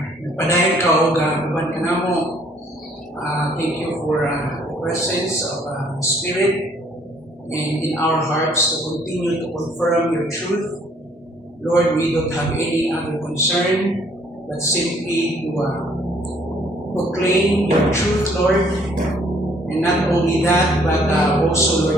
nagpadayon ka o uban ka namo. Thank you for the presence of the Spirit and in our hearts to continue to confirm your truth. Lord, we don't have any other concern but simply to proclaim your truth, Lord. And not only that, but also,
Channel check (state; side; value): normal; both; correlation 0.62